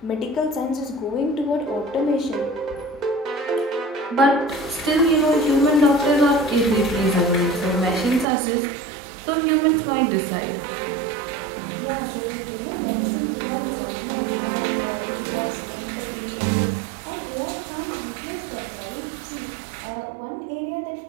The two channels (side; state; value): left; drops out; at 8.2 s